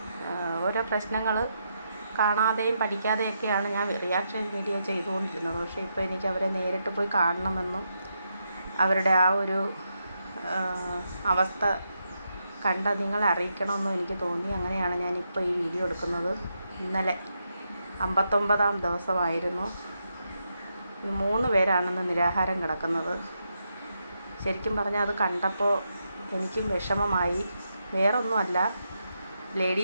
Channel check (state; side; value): inverted; both; correlation -0.83